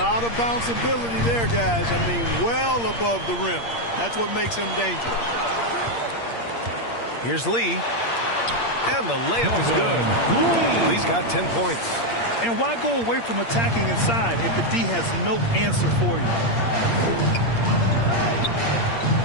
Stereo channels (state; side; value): late; right; 8.6 ms